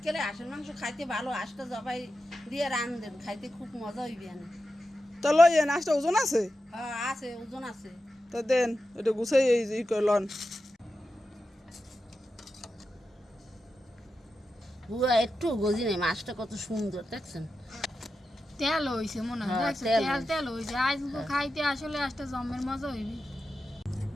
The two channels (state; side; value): normal; both; correlation 0.90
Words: হাঁসের মাংস খাইতে ভালো, হাঁসটা জবাই দিয়ে রান্ধেন, খাইতে খুব মজা হইবে। তো লই নাচটা ওজন আছে? হ্যাঁ আছে, ওজন আছে। তো দেন এটা গুছাই এই লন। পুরা একটু গজি নেই, মাছটা কত সুন্দর দেখছেন। তেল হইছে মনে হয়, হ্যাঁ, দেখছেন তেল তেল হইছে। আজ খাইতে আসলে একটা জমের মজা হইবে।